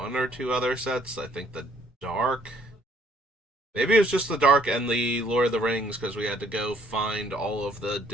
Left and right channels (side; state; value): both; normal; correlation 0.63